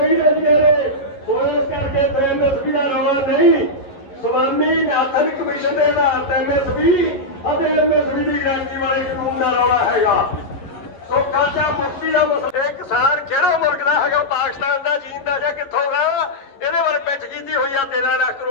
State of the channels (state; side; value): late; right; 11 ms